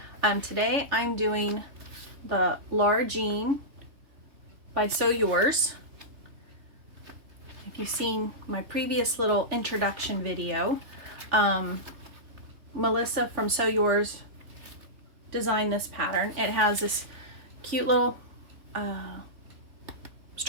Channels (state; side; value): late; left; 3.4 ms